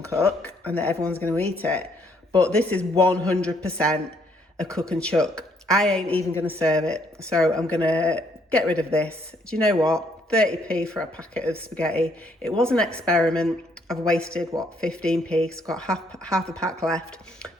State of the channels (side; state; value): both; normal; correlation 0.69